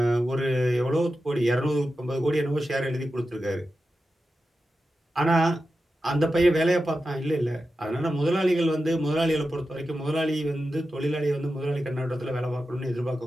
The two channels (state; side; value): normal; both; correlation 0.91